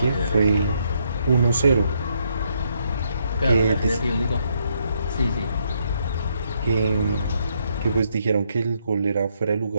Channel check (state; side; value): inverted; both; correlation -0.74